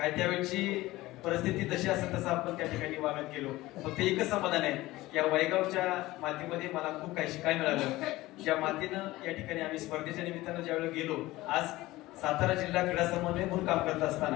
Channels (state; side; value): quieter; right; 18.3 dB